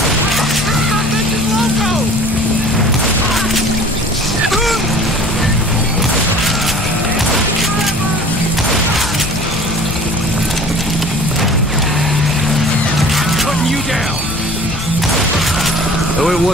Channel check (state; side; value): normal; both; correlation 0.46